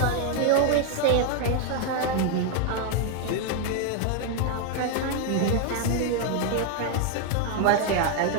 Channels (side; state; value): both; different; correlation 0.00